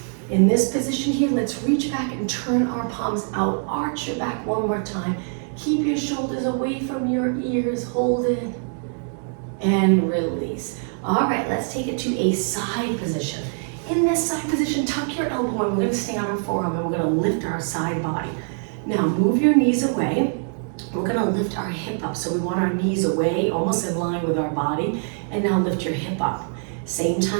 In this position here, let's reach back and turn our palms out. Arch your back one more time. Keep your shoulders away from your ears. Hold it and release. All right, let's take it to a side position. In this side position, tuck your elbow in. We're gonna stay on our forearm and we're gonna lift our side body. Now move your knees away. We're gonna lift our hip up. So we want our knees away, almost in line with our body. And now lift your hip up. Same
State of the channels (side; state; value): left; silent; 55 dB below the other